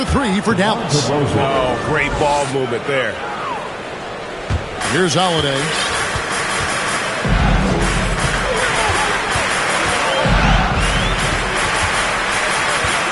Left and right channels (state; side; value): identical; both; correlation 1.00